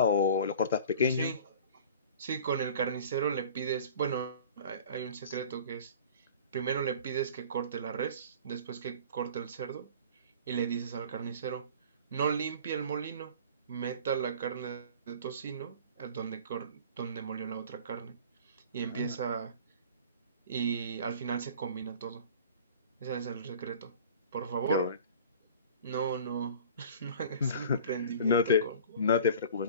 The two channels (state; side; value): inverted; both; correlation -0.43